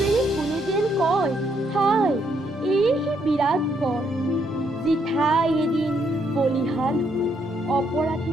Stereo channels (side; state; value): both; normal; correlation 0.74